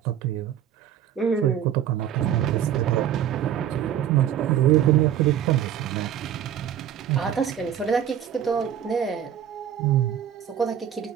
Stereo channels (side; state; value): left; quieter; 9.9 dB